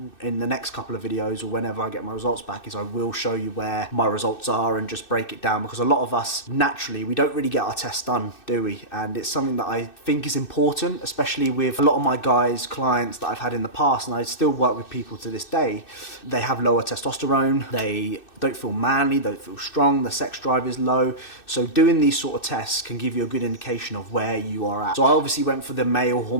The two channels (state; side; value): late; right; 2.6 ms